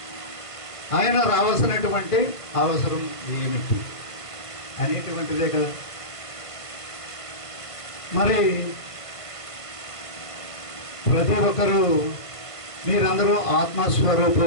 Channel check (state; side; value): late; right; 1.5 ms